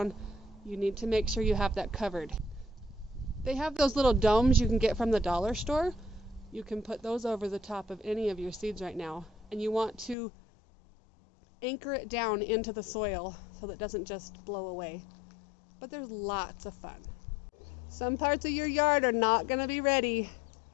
you need to make sure you have that covered. They have those little domes you can get from the dollar store. You can put those over the top of any of your seeds right now. And you want to anchor it down into the soil so that it doesn't just blow away. But there's lots of fun. Some parts of your yard are not going to be ready.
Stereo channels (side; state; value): right; drops out; at 10.2 s